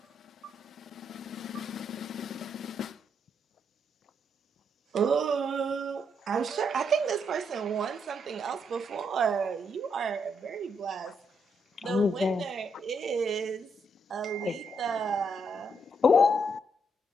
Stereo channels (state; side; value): normal; both; correlation 0.77